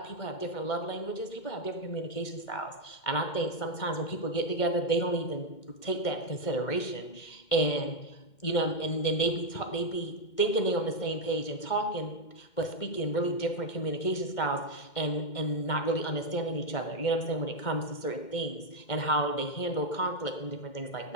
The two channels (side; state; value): right; late; 2.1 ms